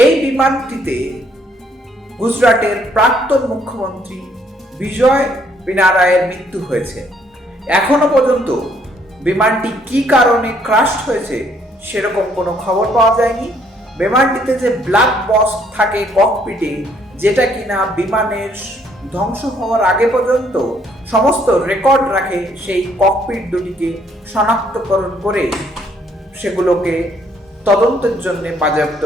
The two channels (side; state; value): both; normal; correlation 0.67